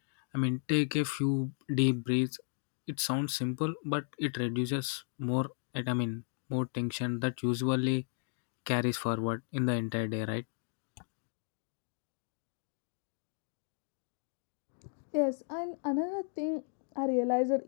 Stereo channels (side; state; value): right; silent; 55 dB below the other